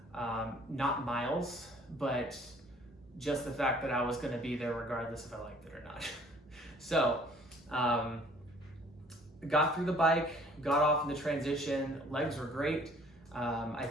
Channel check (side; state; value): both; normal; correlation 0.56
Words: not miles, but just the fact that I was going to be there regardless if I liked it or not. So got through the bike, got off in the transition, legs were great. I